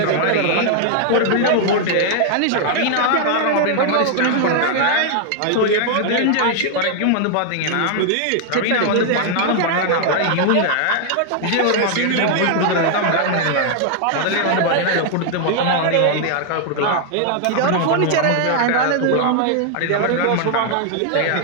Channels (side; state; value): both; different; correlation 0.00